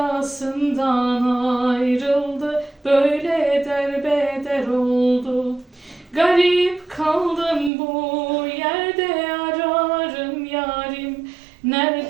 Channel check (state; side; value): drops out; left; at 7.7 s